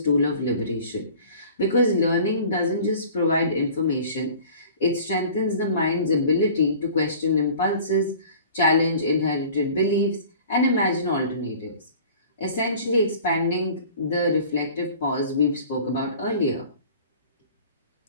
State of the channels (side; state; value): both; inverted; correlation -0.46